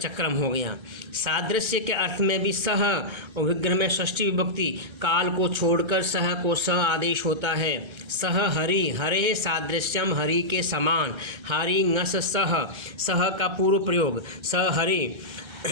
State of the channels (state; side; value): late; left; 1.3 ms